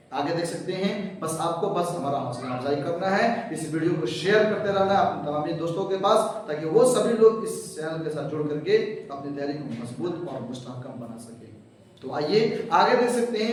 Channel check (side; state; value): both; identical; correlation 1.00